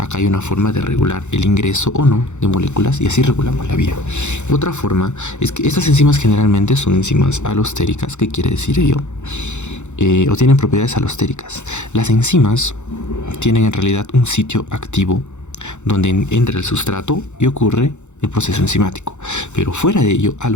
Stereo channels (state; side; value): late; right; 0.83 ms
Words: hay una forma de regular el ingreso o no de moléculas, y así regulamos la vía. Otra forma es que estas enzimas generalmente son enzimas alostéricas. ¿Qué quiere decir ello? O tienen propiedades alostéricas. Las enzimas tienen en realidad un sitio activo donde entra el sustrato y ocurre el proceso enzimático, pero fuera de ello,